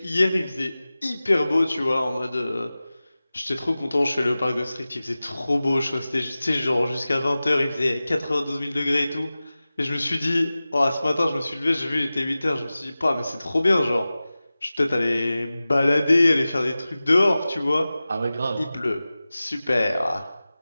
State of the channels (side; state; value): both; inverted; correlation -0.96